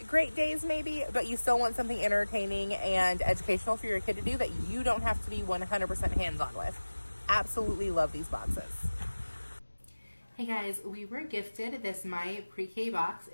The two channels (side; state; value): both; inverted; correlation -1.00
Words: great days maybe, but you still want something entertaining and educational for your kid to do that you don't have to be 100% hands-on with. Absolutely love these boxes. Hey guys, we were gifted this My Pre-K box.